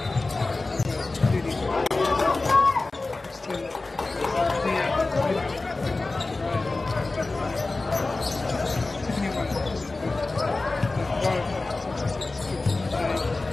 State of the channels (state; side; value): quieter; right; 3.4 dB